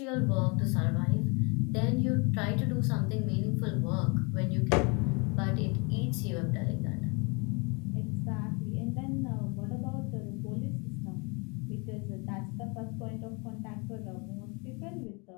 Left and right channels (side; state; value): right; quieter; 31.3 dB